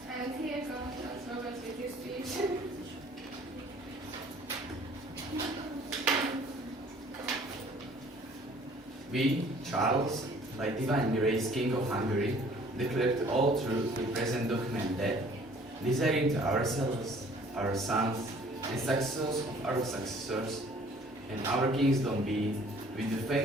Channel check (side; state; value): both; normal; correlation 0.55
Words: And here comes Charles Robert with his speech. We, Charles, by divine grace, King of Hungary, declare to all truth the present document that, desiring to ourselves, our sons, and successors of our successors, and our kingdom be, with the